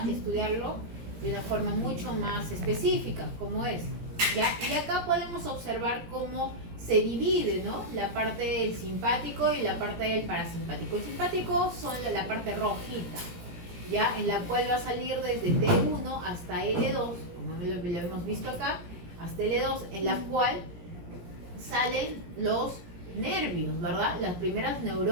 estudiarlo de una forma mucho más específica, como es, ¿ya? Y acá podemos observar cómo se divide, ¿no? La parte del simpático y la parte del parasimpático. El simpático son la parte rojita, ¿ya? En la cual va a salir desde T1 hasta L2, como lo hemos visto acá, hasta L2, en la cual salen los nervios, ¿verdad? Las primeras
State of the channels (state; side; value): late; left; 17 ms